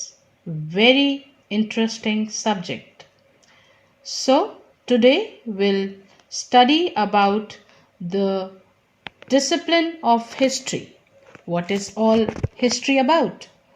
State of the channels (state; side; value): identical; both; correlation 1.00